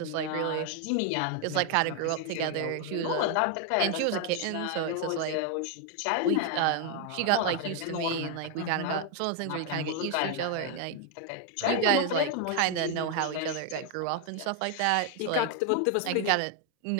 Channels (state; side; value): different; both; correlation 0.01